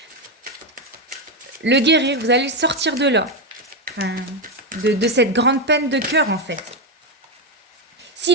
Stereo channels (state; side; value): normal; both; correlation 0.08